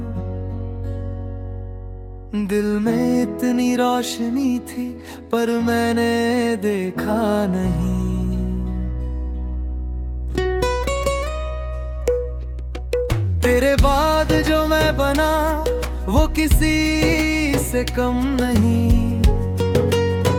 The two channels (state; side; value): identical; both; correlation 1.00